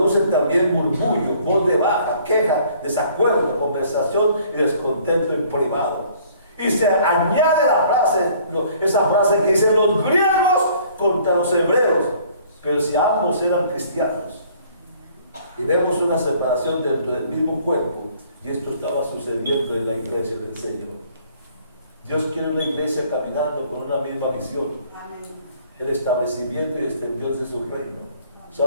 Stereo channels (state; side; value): inverted; both; correlation -0.57